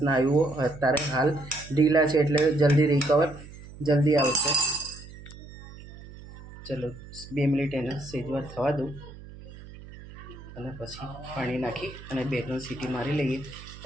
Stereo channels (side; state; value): right; noise; hum, 16 dB below the sound